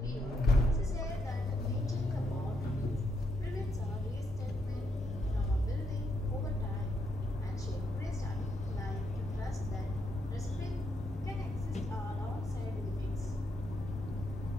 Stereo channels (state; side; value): normal; both; correlation 0.78